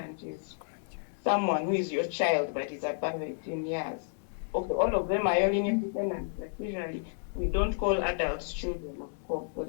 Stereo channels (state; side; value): silent; right; digital silence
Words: is someone who is your child, but is above 18 years. Okay, all of them are your linear descendants, but usually we don't call adults children, of course, so